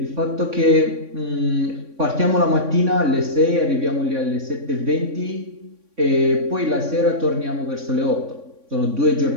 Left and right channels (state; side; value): late; left; 3.6 ms